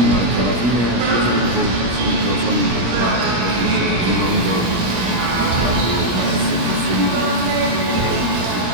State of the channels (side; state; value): left; late; 17 ms